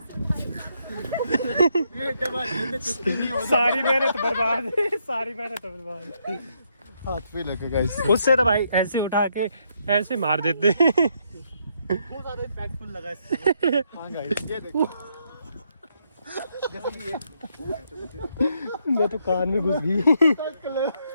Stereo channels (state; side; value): inverted; both; correlation -0.75